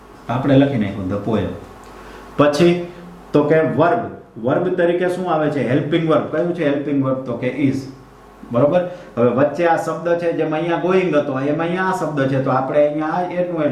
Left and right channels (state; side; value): identical; both; correlation 1.00